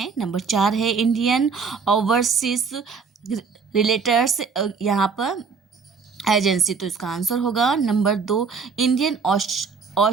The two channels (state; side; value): quieter; left; 5.4 dB